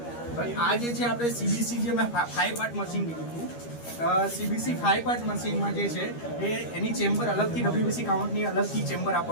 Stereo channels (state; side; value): late; right; 13 ms